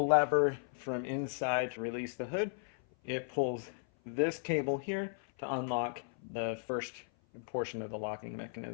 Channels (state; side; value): silent; right; 54 dB below the other